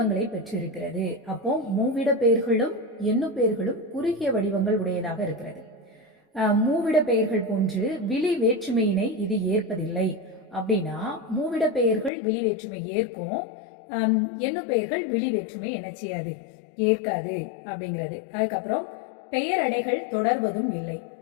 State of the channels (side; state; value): right; drops out; at 12.1 s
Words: பெற்றிருக்கிறது. அப்போ மூவிட பெயர்களும் எண்ணு பெயர்களும் குறுகிய வடிவங்கள் உடையதாக இருக்கிறது. மூவிட பெயர்கள் போன்று விழி வேற்றுமையினை இது ஏற்பதில்லை. அப்படின்னா மூவிட பெயர்கள் விழி வேற்றுமை ஏற்கும், எண்ணு பெயர்கள் விழி வேற்றுமை என்ன செய்யாது, ஏற்காது அப்படிங்கிறது. அதுக்கப்புறம் பெயரடைகள் தொடர்வதும் இல்லை.